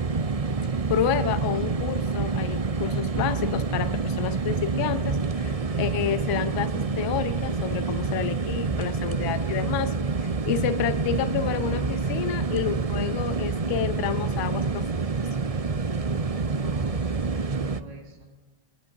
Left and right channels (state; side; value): late; left; 1.7 ms